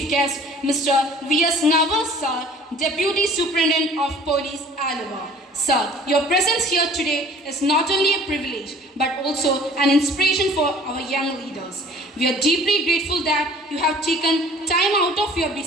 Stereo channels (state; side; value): normal; both; correlation 0.50